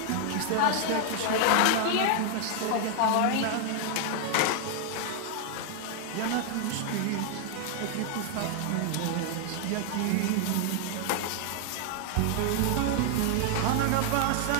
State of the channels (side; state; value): both; different; correlation 0.00